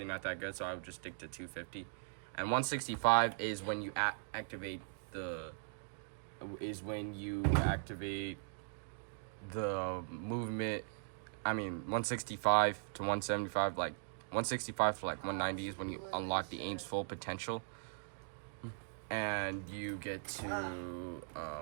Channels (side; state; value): left; silent; digital silence